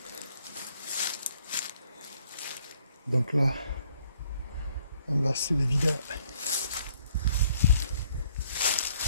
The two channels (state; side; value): inverted; both; correlation -0.65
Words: Donc là, on va c'est les vides.